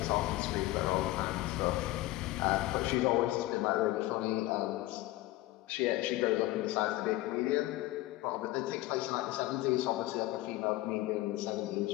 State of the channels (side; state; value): right; quieter; 17.3 dB